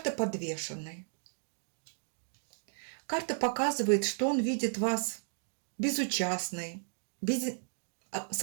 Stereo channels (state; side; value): silent; left; digital silence